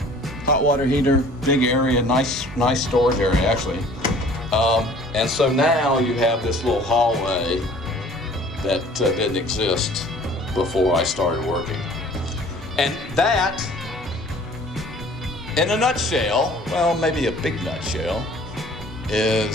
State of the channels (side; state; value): both; normal; correlation 0.51